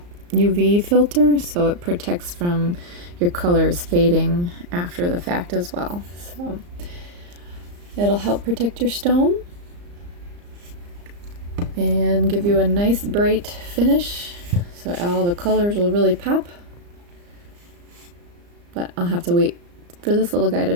UV filter, so it protects from your colors fading after the fact as well. So it'll help protect your stone and give you a nice bright finish, so all the colors will really pop. But I'll have to wait for this little guy to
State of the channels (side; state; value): left; late; 34 ms